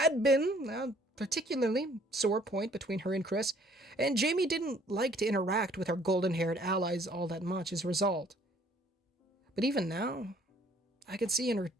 been a particularly sore point between her and Chris, and Jamie didn't like to interact with her golden-haired allies all that much as a result. But even now, I could see in her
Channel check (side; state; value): both; normal; correlation 0.60